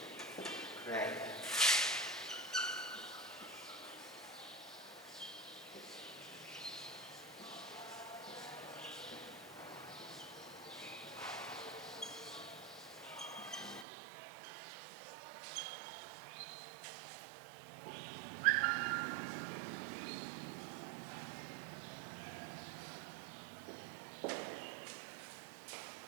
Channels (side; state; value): left; drops out; at 13.9 s